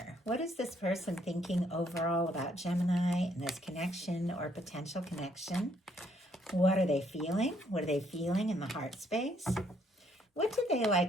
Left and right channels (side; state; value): both; normal; correlation 0.69